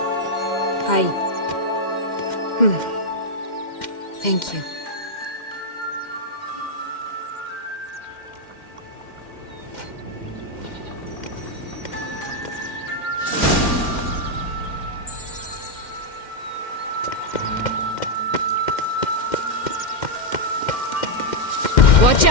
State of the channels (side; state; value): right; late; 2.1 ms